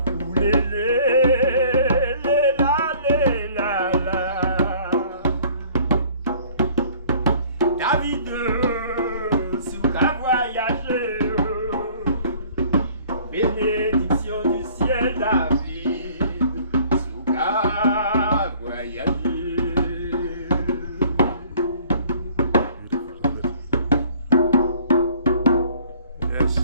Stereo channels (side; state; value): both; inverted; correlation -0.54